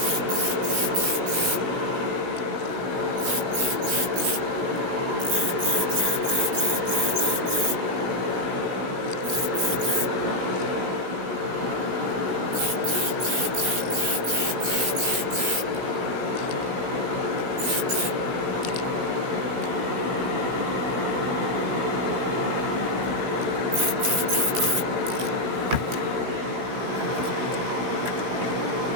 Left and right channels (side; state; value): left; late; 17 ms